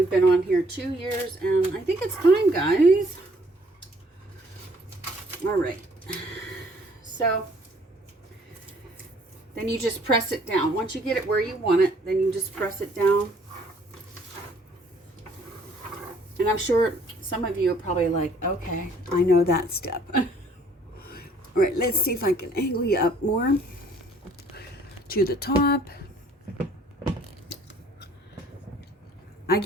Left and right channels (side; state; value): both; normal; correlation 0.60